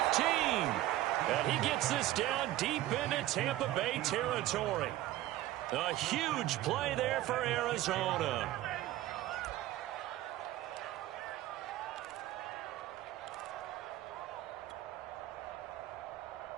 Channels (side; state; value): left; quieter; 15.1 dB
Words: And he gets this down deep into Tampa Bay territory. A huge play there for Arizona.